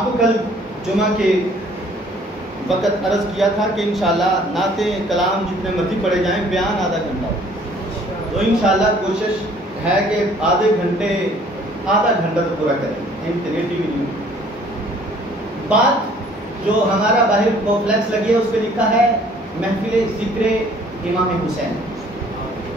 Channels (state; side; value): normal; both; correlation 0.57